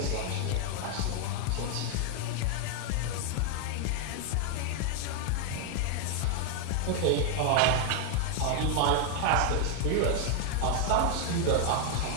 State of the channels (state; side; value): different; both; correlation 0.00